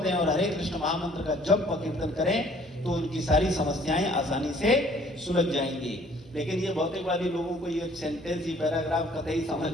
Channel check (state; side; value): normal; both; correlation 0.57